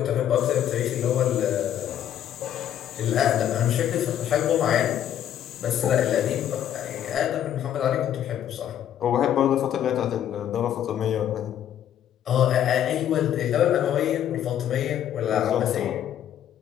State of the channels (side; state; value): right; quieter; 10.5 dB